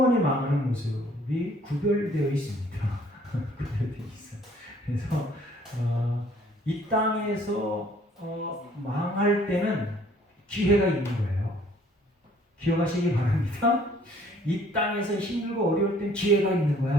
망하는 모습이 구별되어 있습니다. 구별되어 있어요. 그래서 이 땅에서 망할 때는 기회가 있는 거예요. 기억하시기 바랍니다. 이 땅에서 힘들고 어려울 땐 기회가 있는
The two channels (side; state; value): both; normal; correlation 0.59